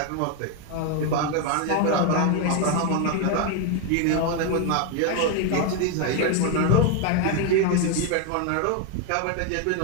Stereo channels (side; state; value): both; different; correlation 0.01